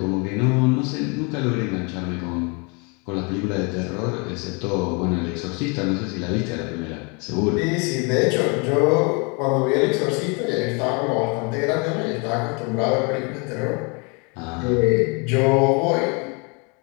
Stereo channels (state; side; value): quieter; right; 32.5 dB